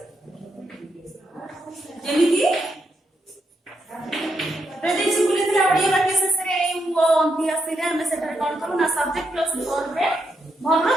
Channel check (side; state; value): both; normal; correlation 0.81